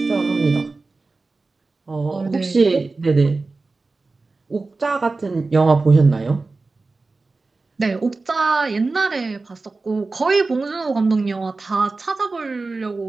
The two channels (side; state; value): left; quieter; 3.7 dB